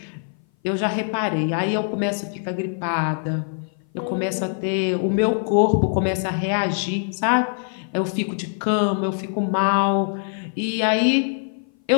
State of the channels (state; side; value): silent; right; 57 dB below the other